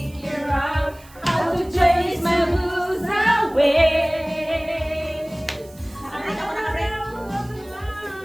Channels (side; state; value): right; noise; hiss, 25 dB below the sound